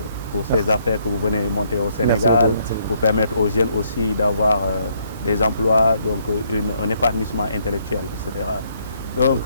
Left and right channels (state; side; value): inverted; both; correlation -0.70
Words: affaires que vous venez monter au Sénégal, pour permettre aux jeunes aussi d'avoir des emplois, donc un épanouissement intellectuel, etc. Donc,